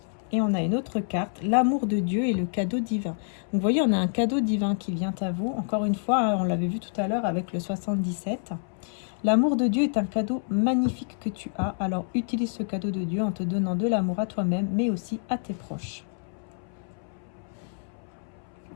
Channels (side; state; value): right; silent; 60 dB below the other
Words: Et on a une autre carte, l'amour de Dieu et le cadeau divin. Donc vous voyez, on a un cadeau divin qui vient à vous. Encore une fois, on l'avait vu tout à l'heure avec le 77. L'amour de Dieu est un cadeau magnifique que tu as. Alors utilise ce cadeau de Dieu en te donnant de l'amour à toi-même, mais aussi à tes proches.